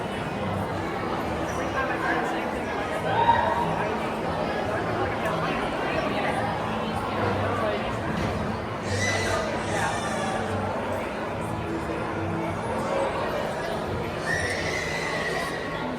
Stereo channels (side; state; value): both; identical; correlation 1.00